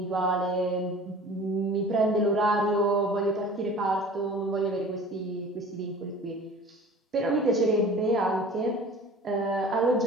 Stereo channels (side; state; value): both; normal; correlation 0.43